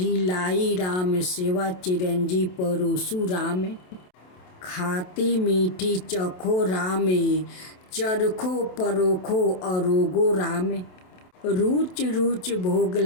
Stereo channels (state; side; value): late; right; 27 ms